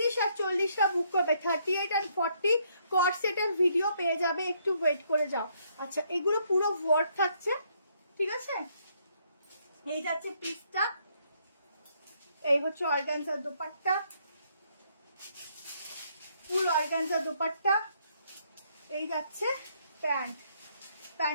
আর 40টা বুক করবে। 38 আর 40 কট সেটের ভিডিও পেয়ে যাবে, একটু ওয়েট করে যাও। আচ্ছা এগুলো পুরো ওয়ার্ক থাকছে, ঠিক আছে? এই যাচ্ছে পিসটা, এই হচ্ছে অর্গানজার দোপাট্টা, ফুল অর্গানজার দোপাট্টা। এই যাচ্ছে প্যান্ট,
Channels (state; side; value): inverted; both; correlation -0.71